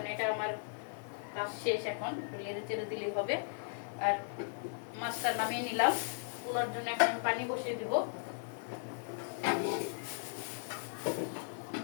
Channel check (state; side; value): silent; right; digital silence